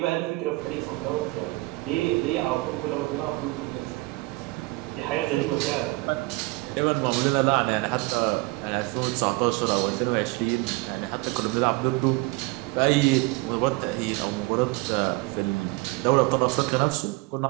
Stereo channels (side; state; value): left; quieter; 23.2 dB